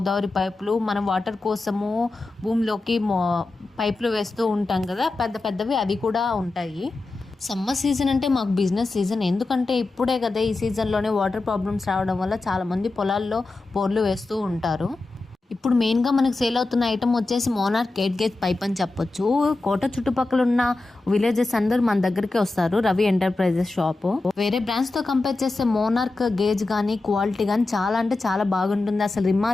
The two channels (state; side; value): quieter; right; 3.3 dB